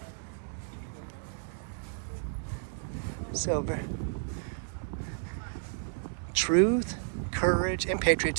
So, truth, courage, and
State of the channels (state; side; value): silent; left; digital silence